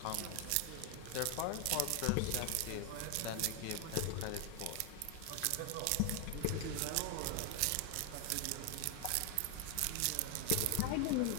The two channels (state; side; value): different; both; correlation 0.01